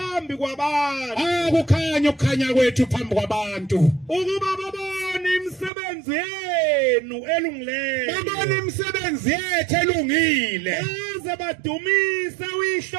kwabantu. Akukhanya ukukhanya kwethu phambi kwabantu. Ukuba babone imisebenzi yenu elungileyo. Babone imisebenzi yethu elungile. Baze badumise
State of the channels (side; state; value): left; drops out; at 5.7 s